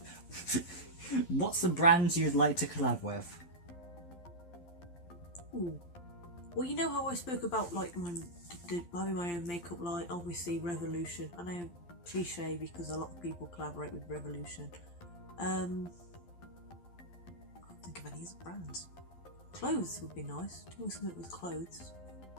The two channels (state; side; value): late; right; 12 ms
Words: What's the brand you'd like to collab with? Ooh. Well, you know how I spoke about like having my own makeup line, obviously Revolution. I know cliche because a lot of people collaborate with Revolution. I can't think of any other brands. Clothes would be nice. Doing something with clothes.